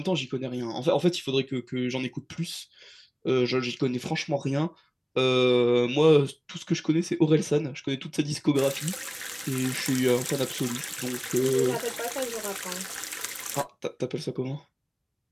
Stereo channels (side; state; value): both; identical; correlation 1.00